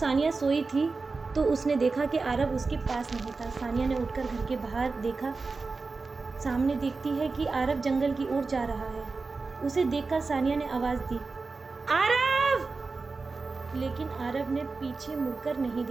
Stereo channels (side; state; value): left; quieter; 4.0 dB